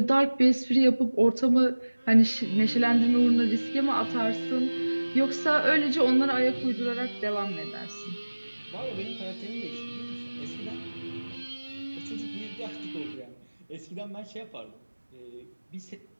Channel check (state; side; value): inverted; both; correlation -1.00